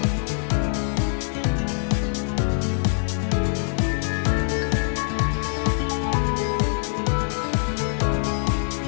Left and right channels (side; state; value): right; silent; digital silence